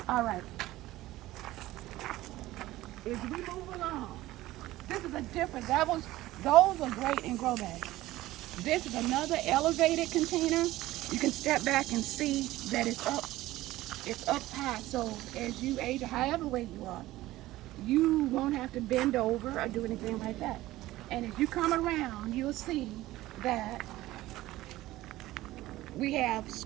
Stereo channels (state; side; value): quieter; left; 16.7 dB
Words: All right. As we move along, this is a different. Those are great in grow bags. This is another elevated container. You can step back and see that it's up. It's up high. So as you age, or however weight you are, you won't have to bend over or do anything like that. And if you come around, you'll see that we have